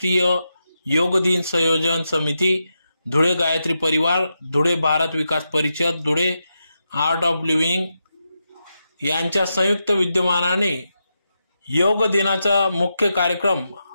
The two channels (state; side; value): inverted; both; correlation -0.87